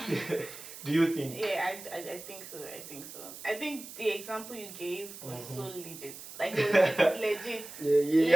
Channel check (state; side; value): noise; right; hiss, 13 dB below the sound